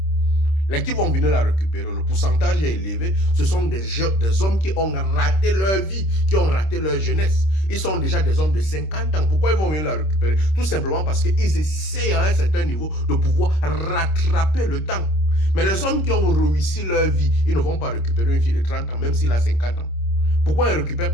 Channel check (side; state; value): right; late; 26 ms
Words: les qui vont venir la récupérer, le pourcentage est élevé, ce sont des hommes qui ont raté leur vie, qui ont raté leur jeunesse. Ils sont déjà des hommes de 50 ans. Pourquoi ils vont venir la récupérer? Tout simplement parce qu'ils essayent à un certain niveau de pouvoir rattraper le temps. Mais les hommes qui ont réussi leur vie, ils ne vont pas récupérer une fille de 30 ans, même s'il a 50 ans. Pourquoi il ne récupère